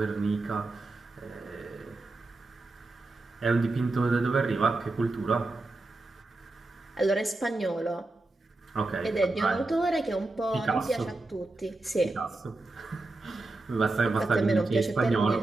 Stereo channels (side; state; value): left; quieter; 3.1 dB